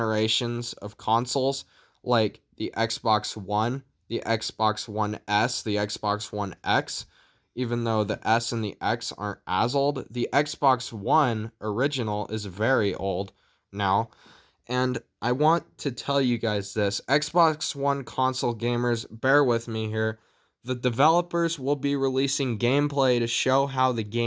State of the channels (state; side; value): identical; both; correlation 1.00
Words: of consoles like the Xbox One, the Xbox One S, the Xbox One X. Even though the S and the X aren't as old, the Xbox One original is very old now. And I want to tell you guys this. Xbox One console gamers, bear with me here. The developers will be releasing gameplay to show how the